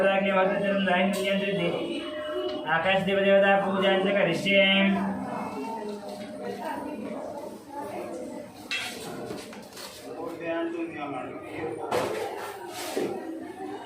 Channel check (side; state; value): both; identical; correlation 1.00